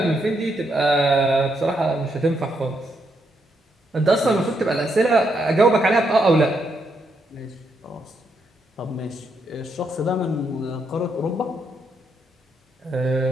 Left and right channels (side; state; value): both; normal; correlation 0.78